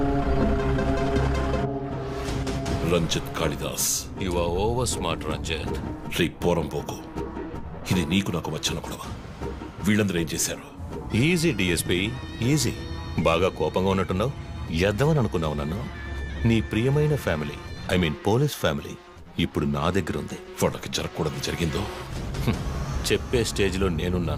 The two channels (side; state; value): both; identical; correlation 1.00